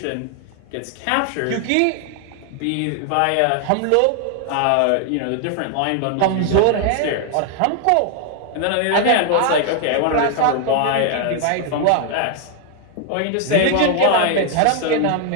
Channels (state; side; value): different; both; correlation 0.00